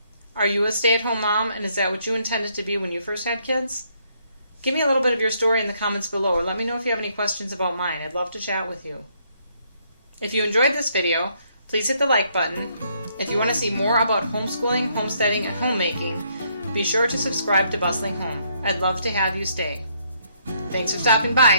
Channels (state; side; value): inverted; both; correlation -0.71